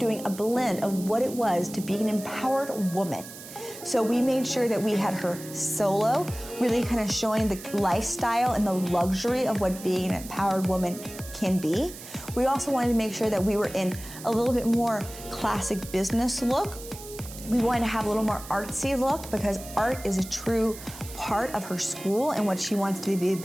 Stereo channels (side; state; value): right; noise; hiss, 14 dB below the sound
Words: a blend of what it was to be an empowered woman. So we made sure that we had her solo, really kind of showing the lifestyle and the luxury of what being an empowered woman can be. We also wanted to make sure that we were in a little bit more classic business look. We wanted to have a little more artsy look, because art is a true part of her school and what she wants to be